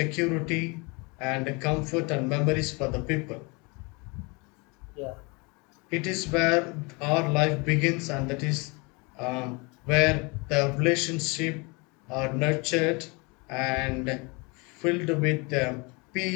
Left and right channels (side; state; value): right; quieter; 28.9 dB